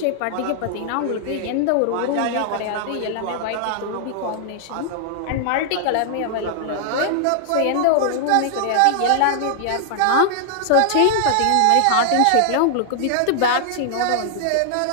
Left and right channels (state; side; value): different; both; correlation -0.01